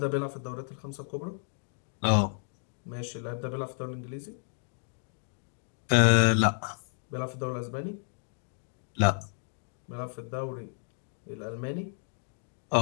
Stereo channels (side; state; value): right; silent; 57 dB below the other